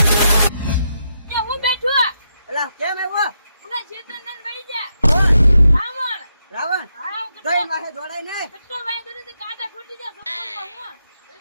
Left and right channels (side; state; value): both; inverted; correlation -0.82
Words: એ હું બેઠો એલા કેમ આવ્યો? ઉના ચેતન વળી જા રાવણ રાવણ હા કઈ માથે દોડાય નહીં. કેટલો વાય દોડે તો કાંટા ફૂટી જાય સોપરમાં